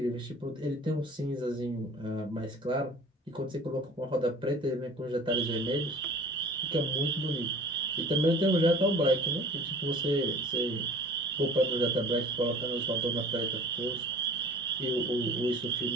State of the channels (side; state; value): both; normal; correlation 0.45